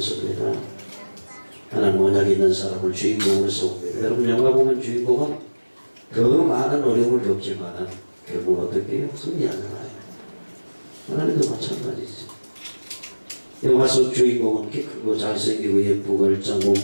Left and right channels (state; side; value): inverted; both; correlation -1.00